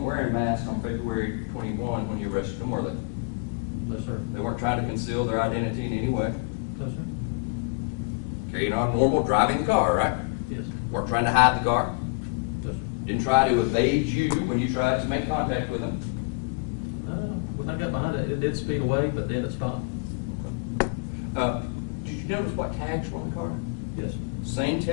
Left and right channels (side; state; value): right; quieter; 33.0 dB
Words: wearing masks on February 21 when you arrested them, were they? No, sir. They weren't trying to conceal their identity in any way. No, sir. Carrying on normal, driving the car, right? Yes. Weren't trying to hide the car. No, sir. Didn't try to evade you when you tried to make contact with them. When I got behind it, it did speed away, but then it stopped. Did you notice what tags were on the car? Yes. Same